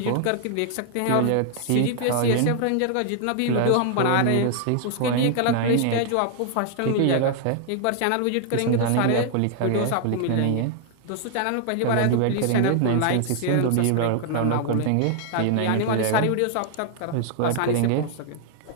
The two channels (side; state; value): both; different; correlation 0.00